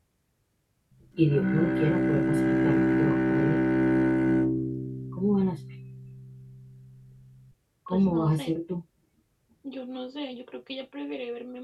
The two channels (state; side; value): identical; both; correlation 1.00